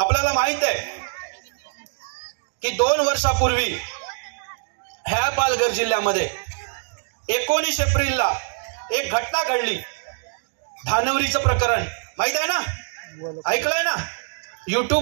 माहित आहे की 2 वर्षापूर्वी ह्या पालघर जिल्ह्यामध्ये 19 एप्रिलला एक घटना घडली. धानवरीचं प्रकरण माहित आहे ना, ऐकलंय ना.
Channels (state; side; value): silent; left; digital silence